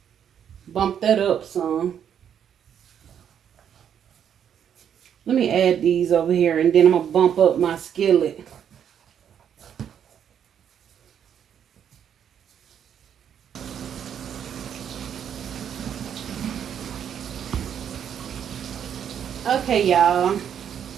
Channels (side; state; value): left; quieter; 8.8 dB